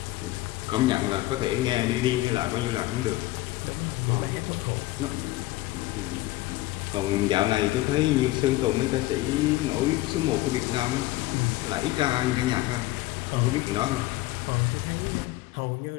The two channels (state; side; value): quieter; right; 18.1 dB